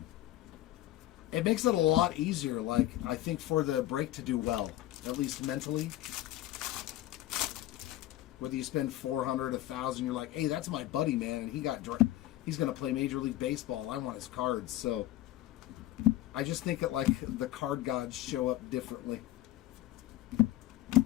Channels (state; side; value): quieter; right; 14.9 dB